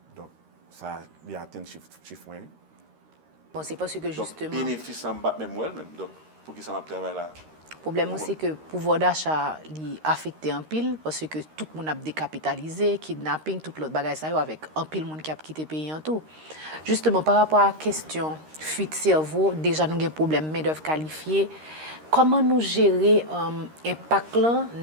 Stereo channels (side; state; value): left; late; 13 ms